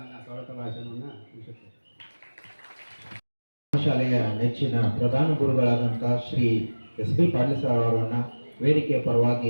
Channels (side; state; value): both; inverted; correlation -1.00